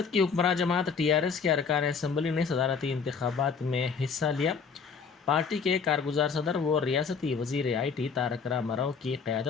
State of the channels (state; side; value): quieter; right; 5.7 dB